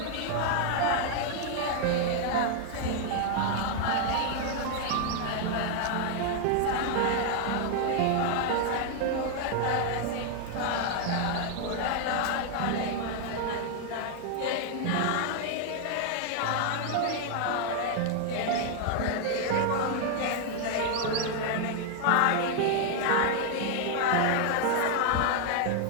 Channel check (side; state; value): both; different; correlation 0.00